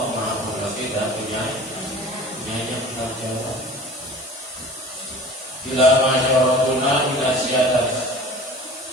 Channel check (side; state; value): both; normal; correlation 0.41